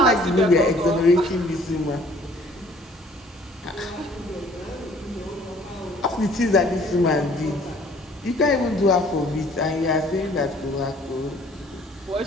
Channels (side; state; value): both; normal; correlation 0.56